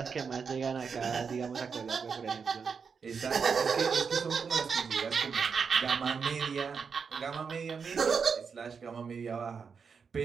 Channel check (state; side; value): quieter; left; 5.9 dB